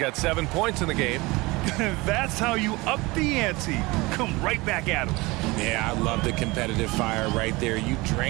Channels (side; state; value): left; quieter; 22.9 dB